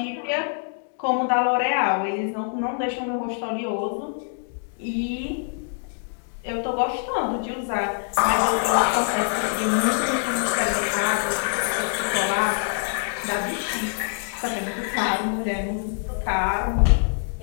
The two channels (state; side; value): silent; right; 62 dB below the other